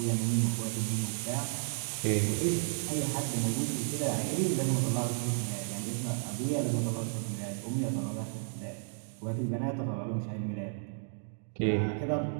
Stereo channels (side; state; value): left; silent; digital silence